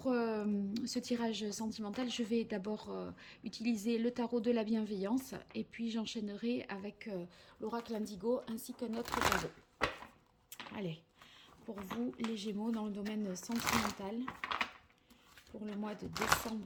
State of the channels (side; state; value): both; identical; correlation 1.00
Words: ce tirage sentimental, je vais d'abord utiliser le tarot de la bienveillance et puis j'enchaînerai avec l'oracle indigo ainsi qu'un autre tarot. Allez, pour vous les Gémeaux dans le domaine sentimental, pour le mois de